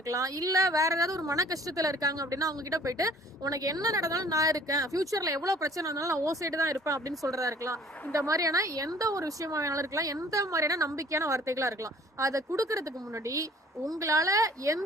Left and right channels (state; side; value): normal; both; correlation 0.53